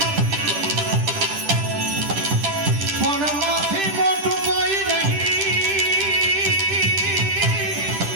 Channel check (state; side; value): late; left; 10 ms